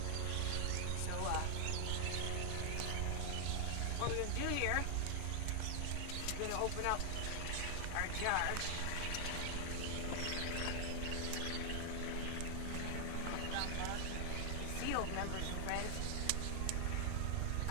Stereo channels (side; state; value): both; different; correlation 0.00